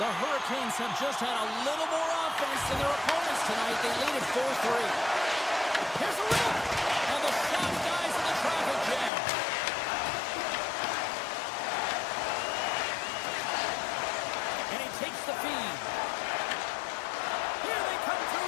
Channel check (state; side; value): drops out; right; at 9.1 s